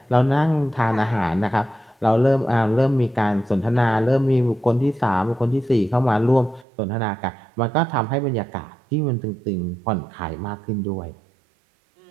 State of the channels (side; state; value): left; drops out; at 6.7 s